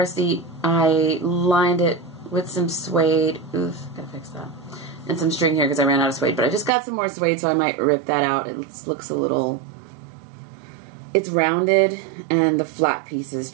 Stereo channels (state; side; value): drops out; left; at 6.7 s